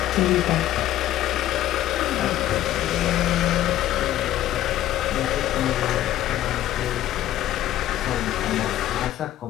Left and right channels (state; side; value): quieter; right; 13.3 dB